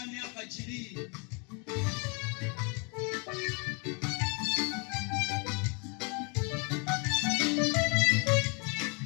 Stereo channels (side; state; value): right; quieter; 33.6 dB